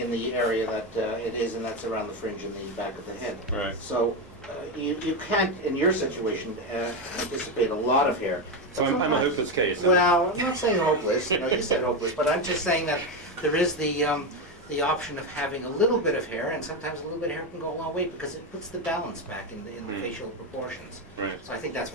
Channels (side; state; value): both; normal; correlation 0.12